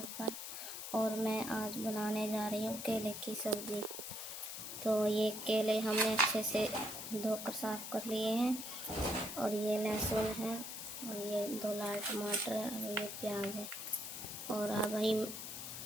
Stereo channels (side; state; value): left; noise; hiss, 7 dB below the sound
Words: पर। और मैं आज बनाने जा रही हूँ केले की सब्जी। तो ये केले हमने अच्छे से धोकर साफ कर लिए हैं। और ये लहसुन है, और ये 2 लाल टमाटर है, और ये प्याज है। और अब